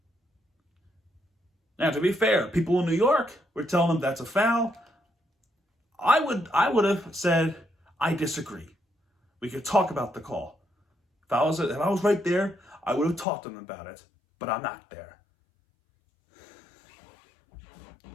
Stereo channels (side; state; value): right; drops out; at 13.2 s